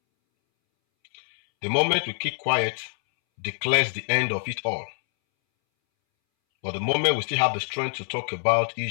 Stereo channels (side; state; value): right; silent; 62 dB below the other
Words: The moment we keep quiet declares the end of it all. But the moment we still have the strength to talk about